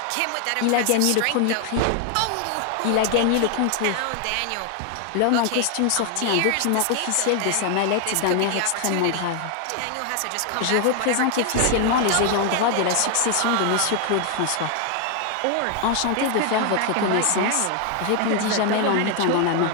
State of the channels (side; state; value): both; different; correlation 0.00